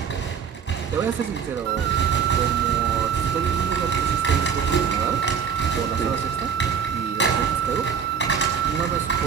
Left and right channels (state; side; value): quieter; left; 7.1 dB